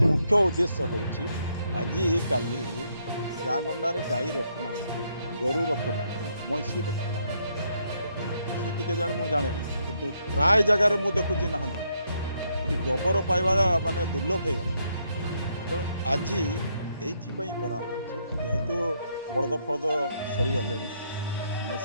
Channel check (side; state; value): both; inverted; correlation -0.74